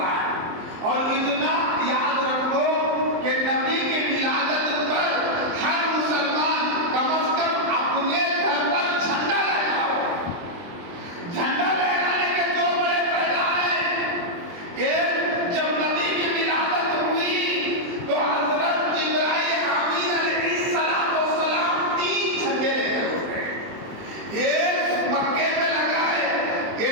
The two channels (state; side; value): late; left; 23 ms